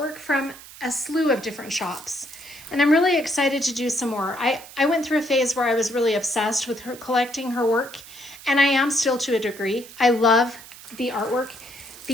from a slew of different shops, and I'm really excited to do some more. I went through a phase where I was really obsessed with her, collecting her work, and I am still to a degree. I love the artwork.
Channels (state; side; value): noise; right; hiss, 18 dB below the sound